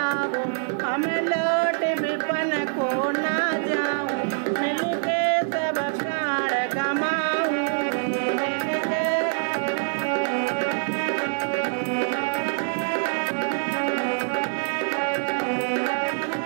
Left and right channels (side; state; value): left; silent; digital silence